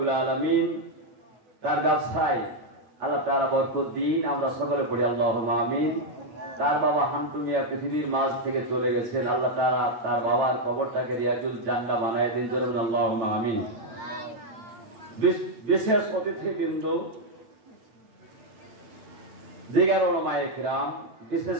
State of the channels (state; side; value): late; left; 9.0 ms